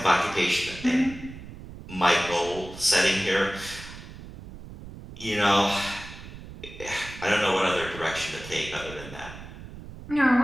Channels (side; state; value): right; noise; rumble, 14 dB below the sound